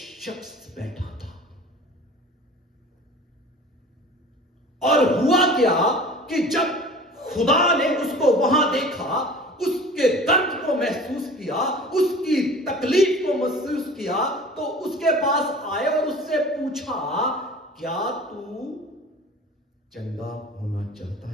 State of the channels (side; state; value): both; normal; correlation 0.42